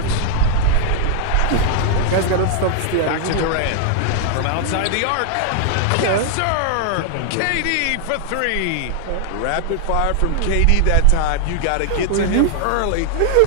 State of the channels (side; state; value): both; different; correlation 0.00